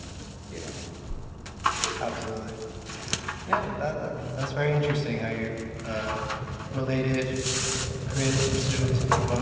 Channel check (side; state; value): both; identical; correlation 1.00